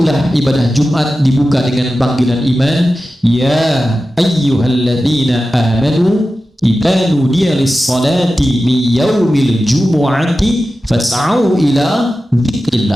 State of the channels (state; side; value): normal; both; correlation 0.93